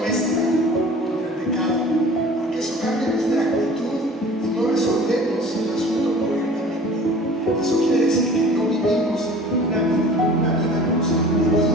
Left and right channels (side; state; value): both; normal; correlation 0.45